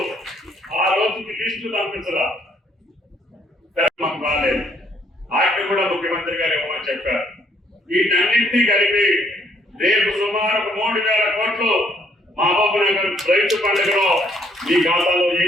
ఆ రోజుకి లిస్టు పంపించరా, మాకు రాలేదు. వాటిని కూడా ముఖ్యమంత్రి గారు ఇవ్వమని చెప్పారు. వీటన్నింటినీ కలిపి రేపు సుమారు 3,000 కోట్లు మహబూబ్ నగర్ రైతు పండుగలో మీ ఖాతాలో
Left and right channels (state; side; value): normal; both; correlation 0.67